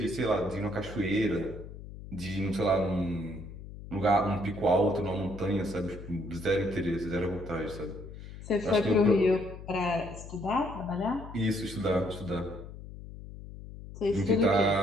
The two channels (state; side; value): noise; left; hum, 13 dB below the sound